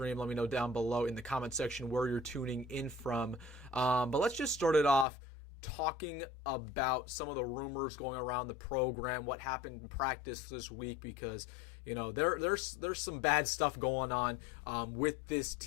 Let me know down below in the comment section where you're tuning in from. But let's just start it off talking about some of the rumors going around the program, what happened in practice this week, because there's some bad stuff going on with this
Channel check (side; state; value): right; drops out; at 5.1 s